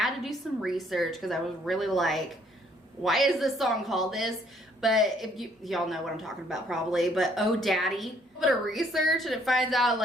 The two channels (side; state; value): both; normal; correlation 0.65